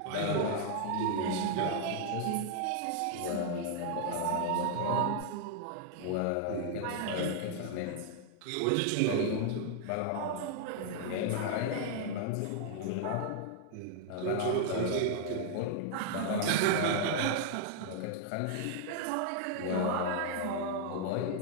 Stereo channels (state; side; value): different; both; correlation -0.01